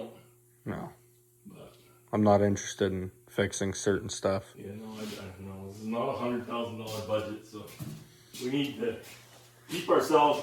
No. But I'm not interested in fixing certain stuff. yeah, no, I no. This is not a $100,000 budget, so we need to keep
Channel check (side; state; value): both; identical; correlation 1.00